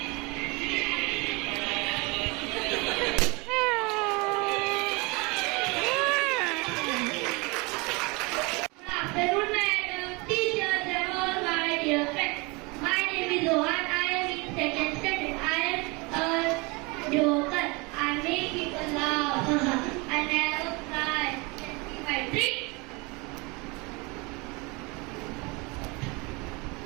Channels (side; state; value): left; quieter; 27.2 dB